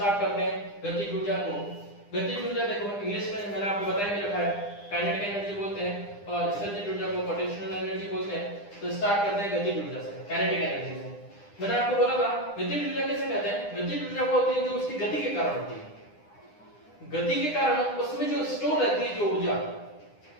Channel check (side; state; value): right; late; 9.9 ms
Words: करते हैं गतिज ऊर्जा को। गतिज ऊर्जा देखो इंग्लिश में मैंने आपको बताया भी रखा है, काइनेटिक एनर्जी बोलते हैं और स्थितिज ऊर्जा को पोटेंशियल एनर्जी बोलते हैं। तो स्टार्ट करते हैं गतिज ऊर्जा से, काइनेटिक एनर्जी से। मैंने आपको बोला था गतिज ऊर्जा किसे कहते हैं? गतिज ऊर्जा वो होती है जो उसकी गति के कारण होती है। गति के कारण उसमें जो स्टोर रहती है जो ऊर्जा,